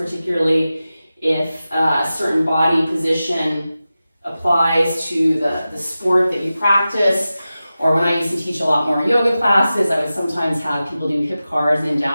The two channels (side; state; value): both; inverted; correlation -0.94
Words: if a certain body position applies to the sport that you practice. Or when I used to teach a lot more yoga classes, I would sometimes have people do hip cars in